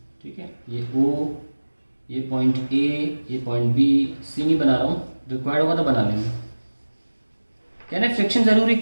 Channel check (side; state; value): both; inverted; correlation -1.00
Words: ठीक है, ये O, ये पॉइंट A, ये पॉइंट B, C नहीं बना रहा हूँ, रिक्वायर्ड होगा तो बना लेंगे. कहने फ्रिक्शन जरूरी